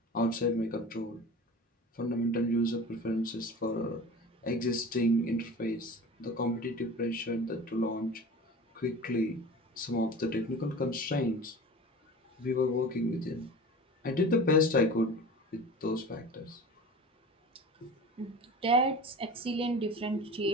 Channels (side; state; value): both; normal; correlation 0.36